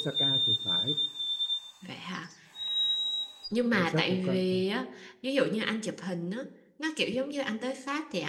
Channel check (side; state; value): both; identical; correlation 1.00